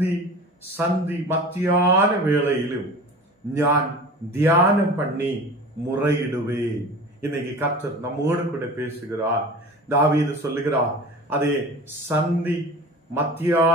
சந்தி மத்தியான வேளையிலும் நான் தியானம் பண்ணி முறையிடுவேன். இன்னைக்கு கர்த்தர் நம்மோடு கூட பேசுகிறார். தாவீது சொல்லுகிறார், அதே சந்தி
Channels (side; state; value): both; normal; correlation 0.37